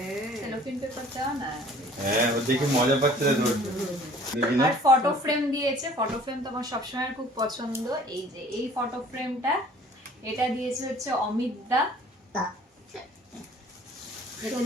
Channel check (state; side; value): normal; both; correlation 0.51